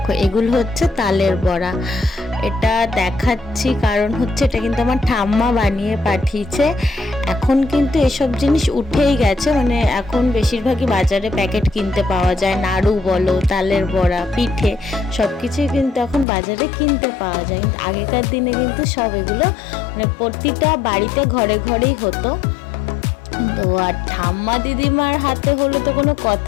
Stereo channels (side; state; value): right; drops out; at 16.2 s